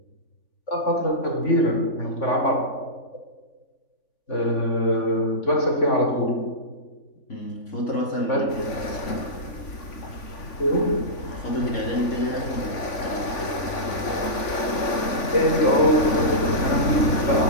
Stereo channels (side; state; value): right; late; 3.5 ms